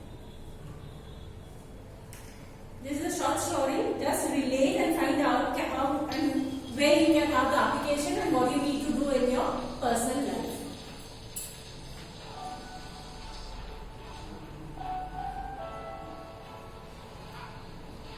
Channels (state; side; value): identical; both; correlation 1.00